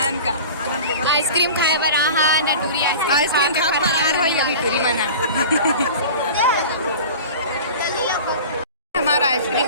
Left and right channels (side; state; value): both; inverted; correlation -0.37